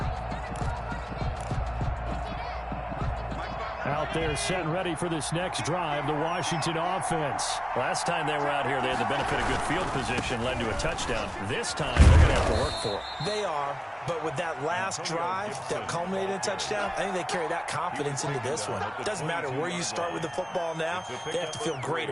Out there set and ready for this next drive, the Washington offense. Last time they were out here, they had the benefit of good field position, led to a touchdown. This time, they're going to have to work for it. They are, but with that last drive that culminated in a touchdown, I think they carry that confidence into this one. It doesn't matter where you start with the football now. They have to feel great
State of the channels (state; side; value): identical; both; correlation 1.00